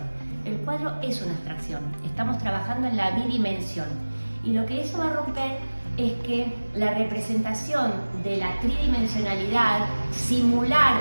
El cuadro es una abstracción. Estamos trabajando en la bidimensión. Y lo que eso va a romper es que la representación de la tridimensionalidad, simular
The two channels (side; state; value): both; inverted; correlation -1.00